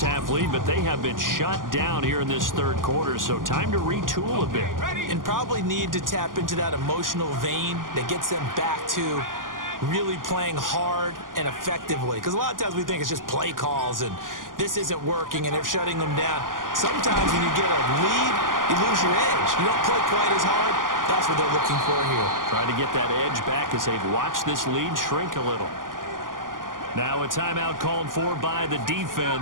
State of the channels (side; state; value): left; late; 0.90 ms